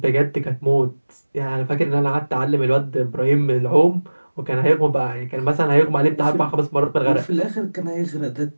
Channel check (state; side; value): inverted; both; correlation -1.00